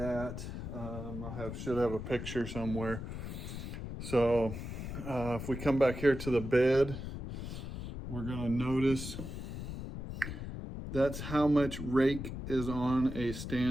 Should have a picture somewhere. So if we come back here to the bed, we're gonna notice that's how much rake is on a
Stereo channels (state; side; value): noise; left; rumble, 7 dB below the sound